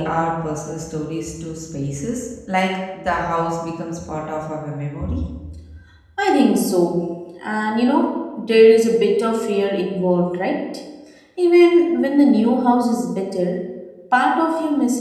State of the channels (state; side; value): identical; both; correlation 1.00